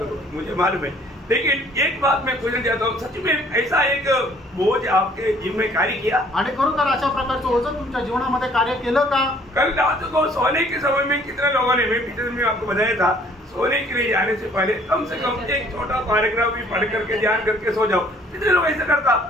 मुझे मालूम है, लेकिन एक बात मैं पूछना चाहता हूँ, सच में ऐसा एक बोझ आपके जीवन में कार्य किया? आणि खरोखर अशा प्रकारचं ओझं तुमच्या जीवनामध्ये कार्य केलं का? कल रात को सोने के समय में कितने लोगों ने, मैं पिछले में आपको बताया था, सोने के लिए जाने से पहले कम से कम एक छोटा पैराग्राफ भी पढ़ करके ध्यान करके सो जाओ। कितने लोग ऐसा करता?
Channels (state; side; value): normal; both; correlation 0.58